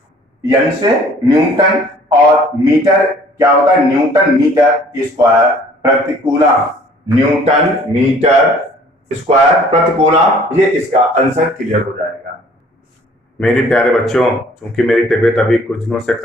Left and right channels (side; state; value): both; normal; correlation 0.55